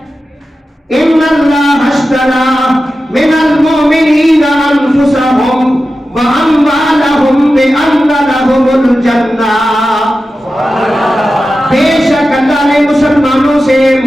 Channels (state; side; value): normal; both; correlation 0.93